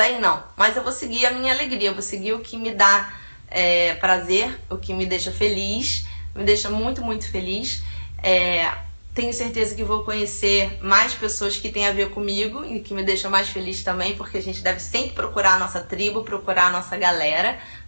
não. Mas eu vou seguir a minha alegria, eu vou seguir o que me dá prazer, o que me deixa feliz, me deixa muito, muito feliz. Tenho certeza que vou conhecer mais pessoas que têm a ver comigo e que me deixa mais feliz também, porque a gente deve sempre procurar a nossa tribo, procurar a nossa galera,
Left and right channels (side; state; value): both; inverted; correlation -1.00